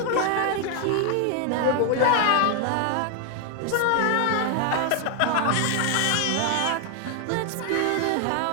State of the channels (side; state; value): both; different; correlation 0.00